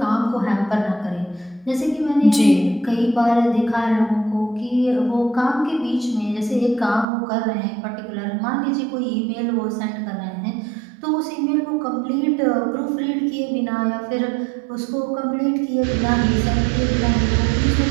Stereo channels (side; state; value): left; drops out; at 7.1 s